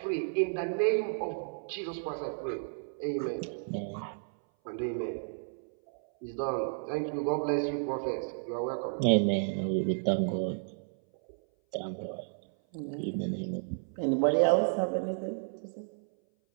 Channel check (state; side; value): silent; left; 56 dB below the other